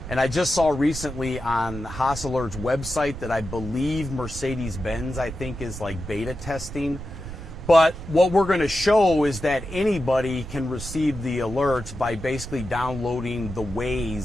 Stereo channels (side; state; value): right; noise; rumble, 11 dB below the sound